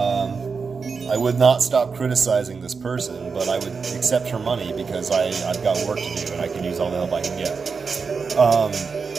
I would not stop criticizing this person, but I would accept her money because I've got work to do and I can use all the help I can get.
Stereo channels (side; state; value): left; quieter; 5.2 dB